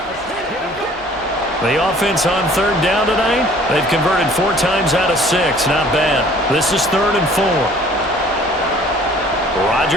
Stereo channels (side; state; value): both; normal; correlation 0.53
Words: The offense on 3rd down tonight, they've converted 4 times out of 6. Not bad. This is 3rd and 4.